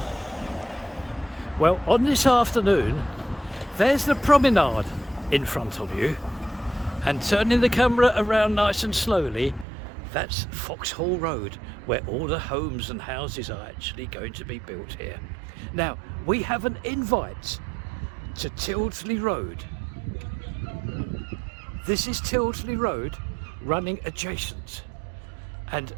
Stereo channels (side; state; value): left; drops out; at 9.7 s